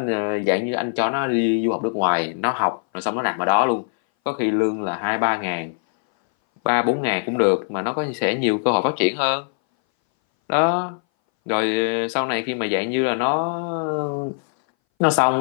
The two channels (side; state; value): right; silent; 61 dB below the other